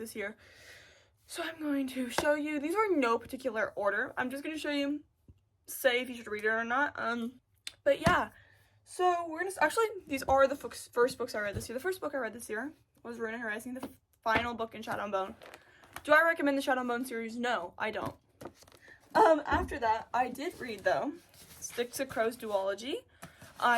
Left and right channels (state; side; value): identical; both; correlation 1.00